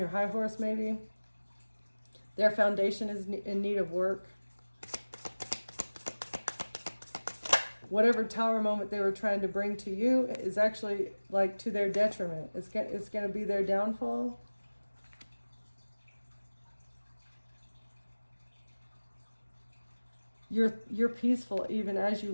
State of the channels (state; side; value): inverted; both; correlation -1.00